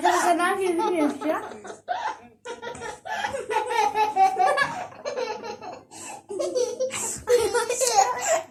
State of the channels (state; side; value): identical; both; correlation 1.00